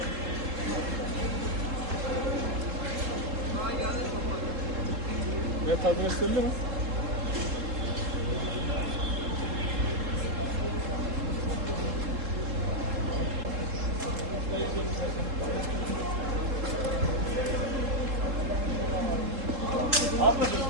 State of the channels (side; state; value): left; late; 3.7 ms